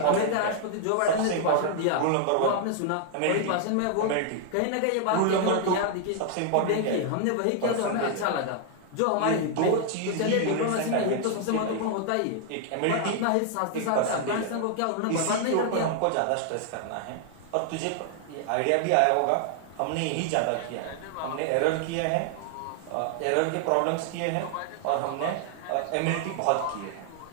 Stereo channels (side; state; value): both; different; correlation 0.00